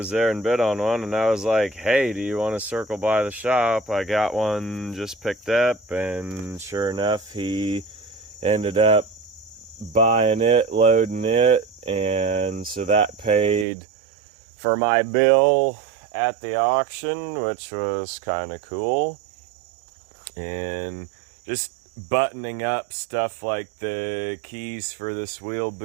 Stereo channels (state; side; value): drops out; left; at 13.7 s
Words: there and bid on one, and I was like, hey, do you want to circle by the shop? I got one just picked up, and sure enough, he ended up buying it, loading it, and so that paid for my bill at the auction, which was kind of cool. And just buttoning up stuff like the keys for this wheel